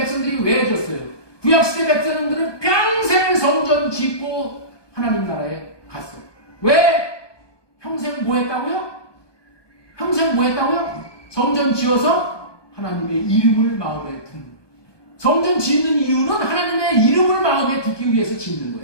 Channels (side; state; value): right; late; 1.2 ms